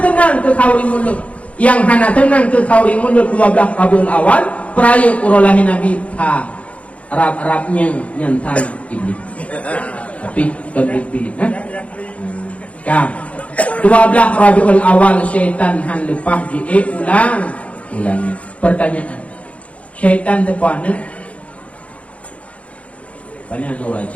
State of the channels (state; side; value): late; right; 0.064 ms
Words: tenang ke kauri mulut. Yang hana tenang ke kauri mulut 12 Rabiul Awal peraya urolahi Nabi Arab-Arabnya nyantan iblis. Tapi iblis kan 12 Rabiul Awal syaitan han lepah ulang. Pertanyaan, syaitan terpana banyak orang